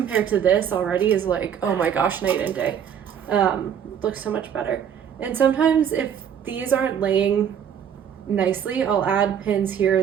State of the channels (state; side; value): quieter; left; 8.5 dB